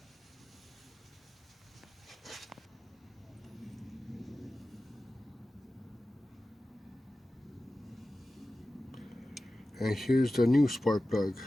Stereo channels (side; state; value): both; normal; correlation 0.95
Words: And here's the new spark plug.